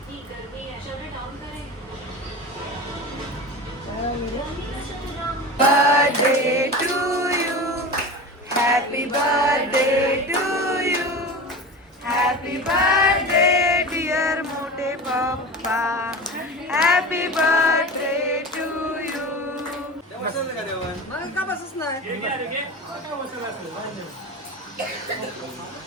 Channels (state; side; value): normal; both; correlation 0.29